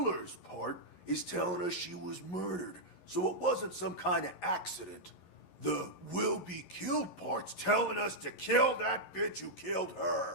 part is telling us she was murdered, so it wasn't some kind of accident. The will be killed part's telling us to kill that bitch who killed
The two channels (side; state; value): right; late; 11 ms